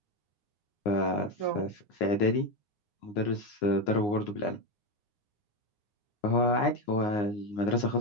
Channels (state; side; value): late; right; 9.6 ms